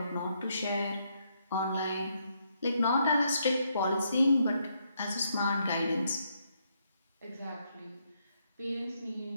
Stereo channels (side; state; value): both; inverted; correlation -0.75